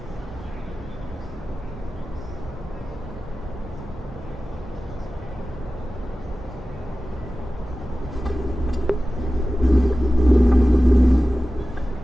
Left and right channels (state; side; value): normal; both; correlation 0.95